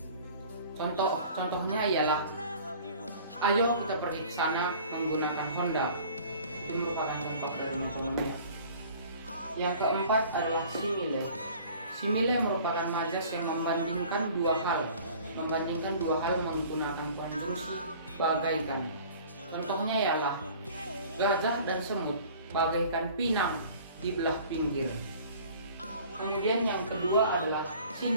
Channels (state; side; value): inverted; both; correlation -0.48